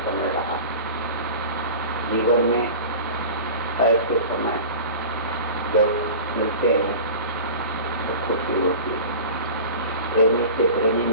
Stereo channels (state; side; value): inverted; both; correlation -0.35